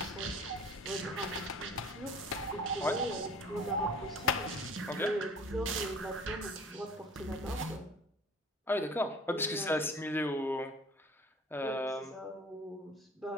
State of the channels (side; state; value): both; normal; correlation 0.46